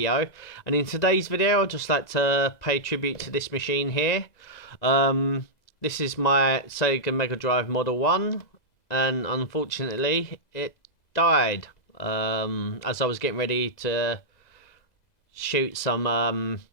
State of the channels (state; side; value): late; right; 2.0 ms